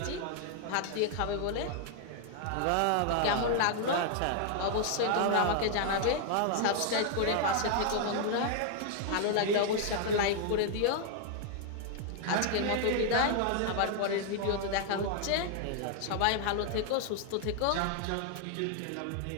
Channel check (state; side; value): different; both; correlation 0.00